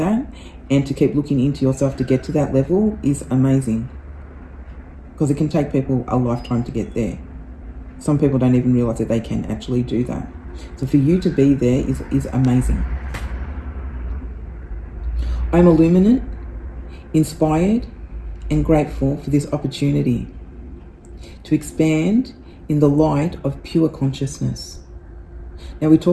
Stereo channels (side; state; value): both; identical; correlation 1.00